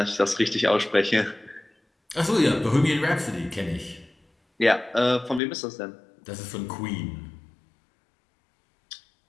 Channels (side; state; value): right; drops out; at 5.4 s